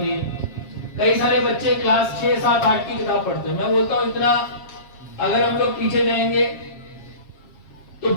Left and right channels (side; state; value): right; late; 7.4 ms